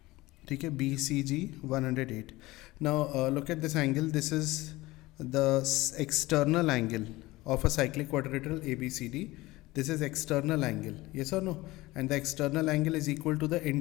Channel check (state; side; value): quieter; right; 19.7 dB